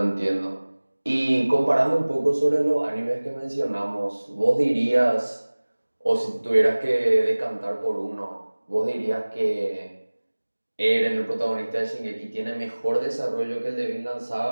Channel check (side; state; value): both; inverted; correlation -1.00